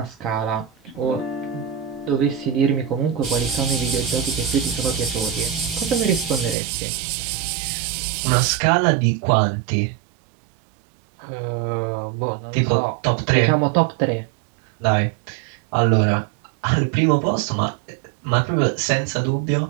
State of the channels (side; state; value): left; drops out; at 6.6 s